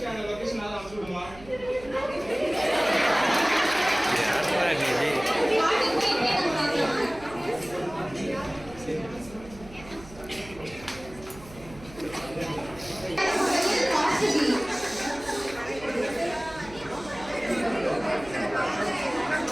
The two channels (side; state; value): right; noise; hum, 19 dB below the sound